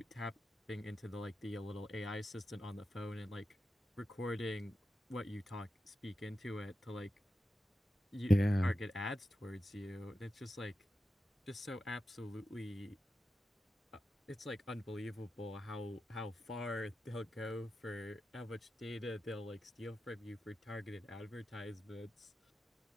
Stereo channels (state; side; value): normal; both; correlation 0.91